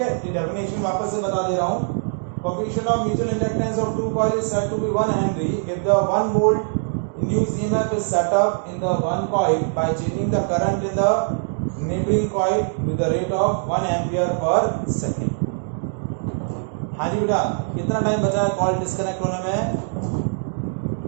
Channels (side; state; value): left; silent; digital silence